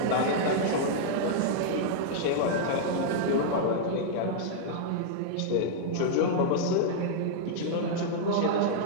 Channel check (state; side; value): different; both; correlation -0.01